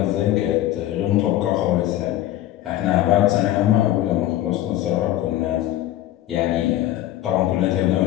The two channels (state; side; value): quieter; right; 14.0 dB